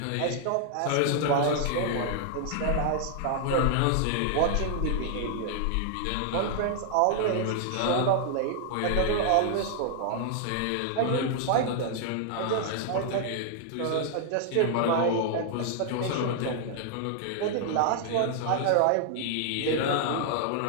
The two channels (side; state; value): both; different; correlation 0.00